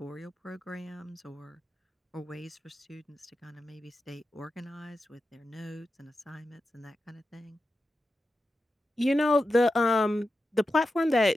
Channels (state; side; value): normal; both; correlation 0.90